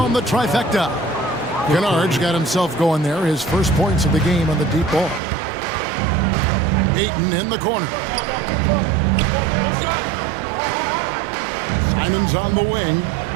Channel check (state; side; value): drops out; left; at 5.2 s